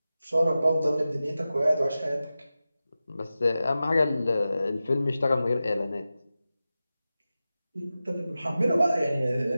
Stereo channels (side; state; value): both; inverted; correlation -0.94